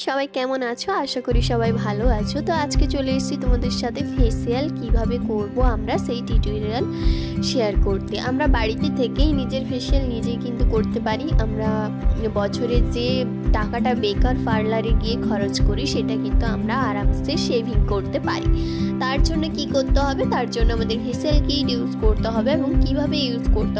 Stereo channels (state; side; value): identical; both; correlation 1.00